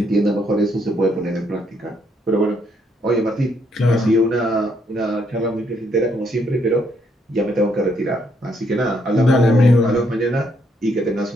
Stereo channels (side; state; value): both; normal; correlation 0.73